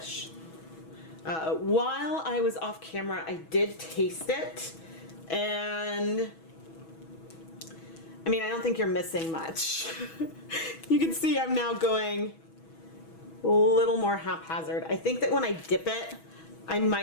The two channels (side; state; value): right; late; 6.2 ms